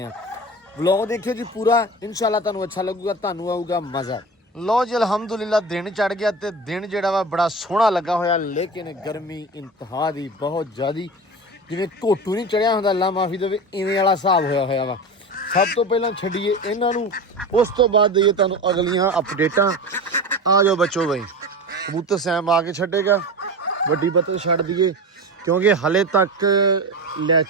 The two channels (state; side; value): normal; both; correlation 0.28